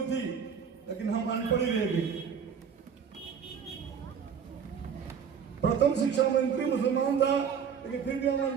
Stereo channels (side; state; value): left; quieter; 7.1 dB